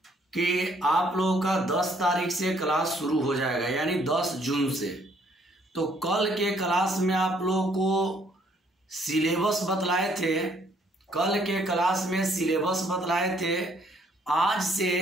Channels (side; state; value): both; normal; correlation 0.65